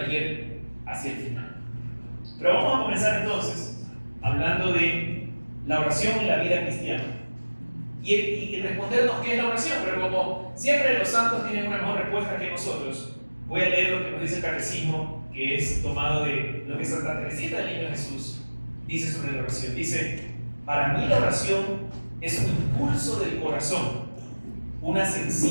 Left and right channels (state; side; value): inverted; both; correlation -1.00